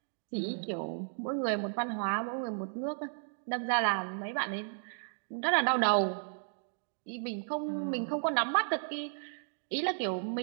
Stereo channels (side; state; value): left; silent; digital silence